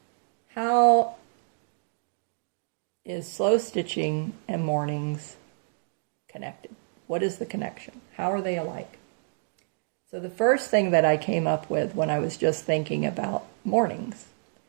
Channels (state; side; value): silent; left; 59 dB below the other